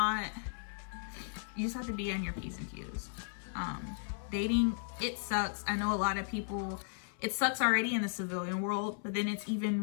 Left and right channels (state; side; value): silent; right; 54 dB below the other